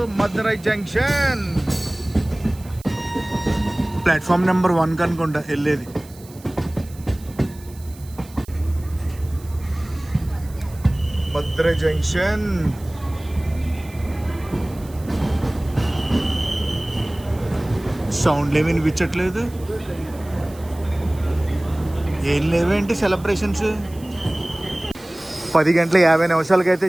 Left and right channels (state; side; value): noise; right; hiss, 23 dB below the sound